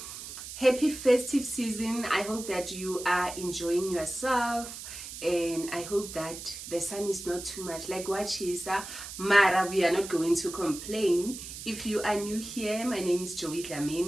happy festive season. I hope that you are enjoying yourself, and I hope that the sun is not too much like Wachisa. Mara, we are not going to complain. If you are new here, my name is Joey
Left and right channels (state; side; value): noise; right; hiss, 10 dB below the sound